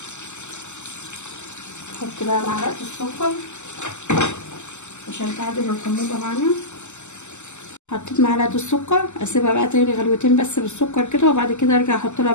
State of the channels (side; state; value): right; late; 0.83 ms